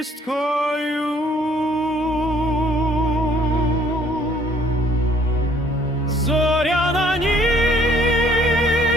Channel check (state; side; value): normal; both; correlation 0.61